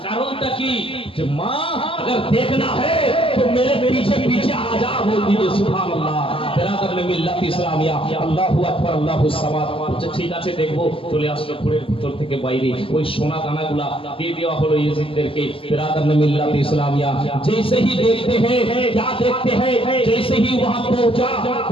কারণটা কি? যে মা अगर देखना है तो मेरे पीछे पीछे आ जा, बोल दीजिए सुभान अल्लाह। बिरादर ने मिल्लत इस्लामिया আল্লাহু আকবার আল্লাহু সামাদ। আচ্ছা ঠিক আছে দেখবো। চলে আসলো ঘরের ভিতর থেকে বাইরে, ওই সোনা দানাগুলা দিয়ে দেওয়া হলো ইয়েজিদদেরকে। बिरादर ने मिल्लत इस्लामिया जैसे ही देखते हैं, क्या देखते हैं, जैसे ही वहां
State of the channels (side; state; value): right; late; 0.26 ms